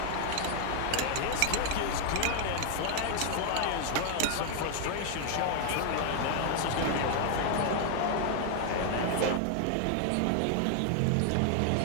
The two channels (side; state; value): both; different; correlation 0.00